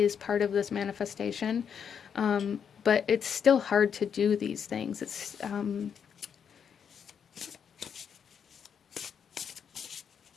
part of this manifestation. But it's still hard to do these things. It's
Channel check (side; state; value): right; quieter; 7.5 dB